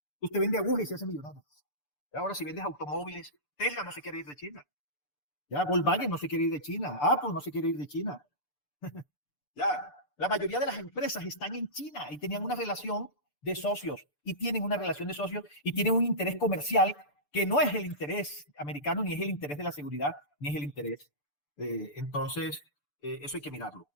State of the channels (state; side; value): late; right; 6.8 ms